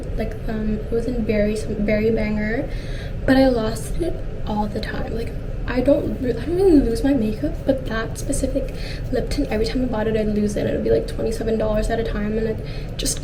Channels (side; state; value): both; identical; correlation 1.00